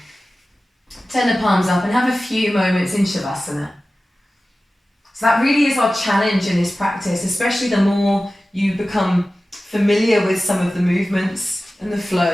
Turn the palms up and have a few moments in Shavasana. So that really is our challenge in this practice, especially the more you become familiar with some of the movements and the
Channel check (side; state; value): both; normal; correlation 0.96